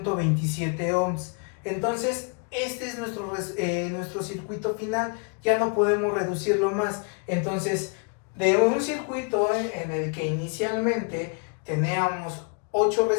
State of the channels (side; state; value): right; quieter; 36.1 dB